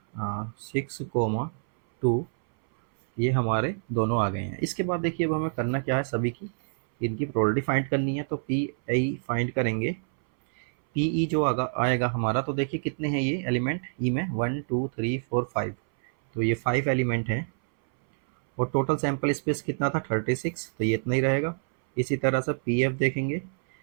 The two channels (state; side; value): silent; left; 60 dB below the other